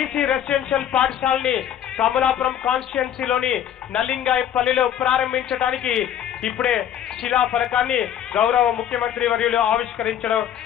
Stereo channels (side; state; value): right; quieter; 10.1 dB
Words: రెసిడెన్షియల్ పాఠశాలని కమలాపురం కాన్స్టిట్యున్సీలోని నల్లింగాయపల్లిలో ప్రారంభించడానికి ఇప్పుడే శిలా ఫలకాన్ని గౌరవ ముఖ్యమంత్రి వర్యులు ఆవిష్కరించడం